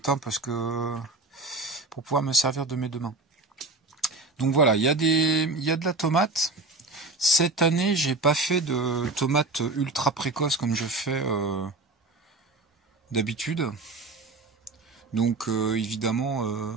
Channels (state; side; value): quieter; left; 3.4 dB